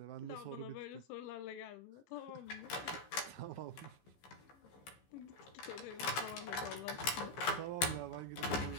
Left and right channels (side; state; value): right; late; 15 ms